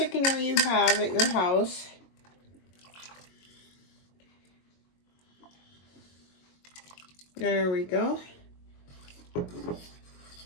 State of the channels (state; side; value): late; right; 22 ms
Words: you have at your house. There we go.